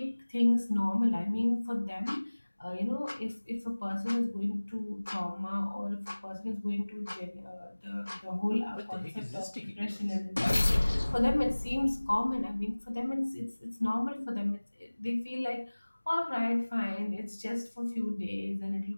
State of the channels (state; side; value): inverted; both; correlation -1.00